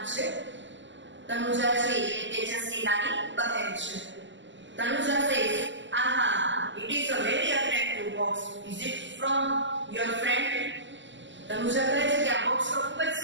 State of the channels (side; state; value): left; late; 0.54 ms